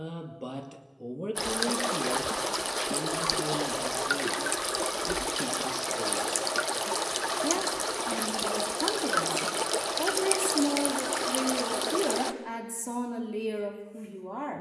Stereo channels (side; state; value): both; identical; correlation 1.00